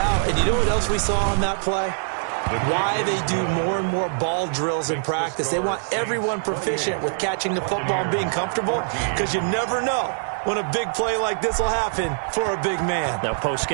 And you know what else we saw on that play? Why they do more and more ball drills in practice. They want everyone proficient with catching the football and being comfortable, because you never know when a big play like this will happen for a big man. Now,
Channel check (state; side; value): silent; left; digital silence